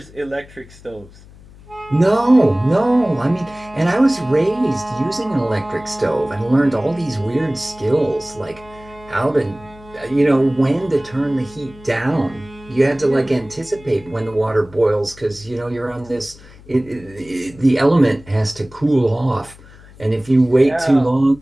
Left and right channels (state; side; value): noise; left; hum, 22 dB below the sound